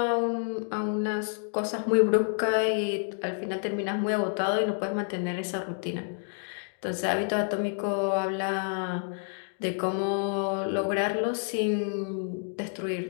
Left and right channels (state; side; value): silent; right; 59 dB below the other